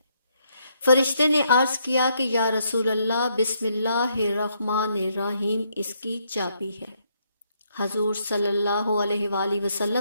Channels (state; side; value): inverted; both; correlation -0.74